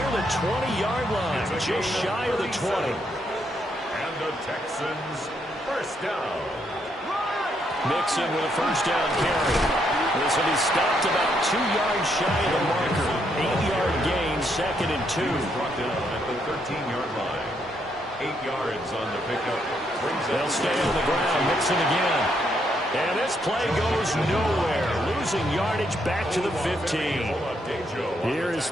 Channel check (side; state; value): both; normal; correlation 0.75